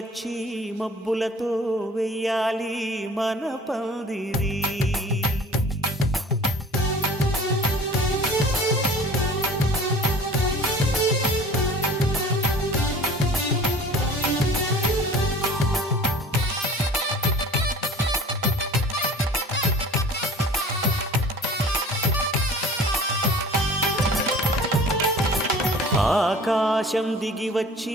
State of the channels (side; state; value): both; normal; correlation 0.45